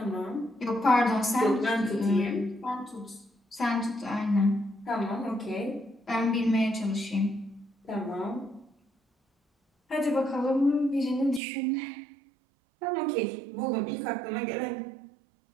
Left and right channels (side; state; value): left; drops out; at 11.4 s